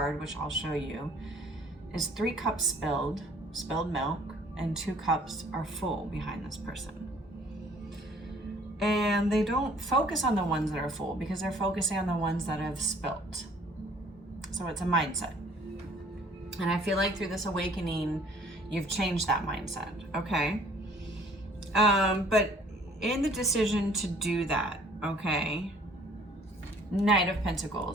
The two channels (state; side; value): normal; both; correlation 0.56